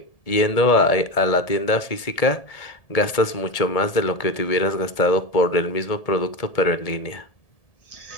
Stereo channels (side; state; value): right; late; 1.8 ms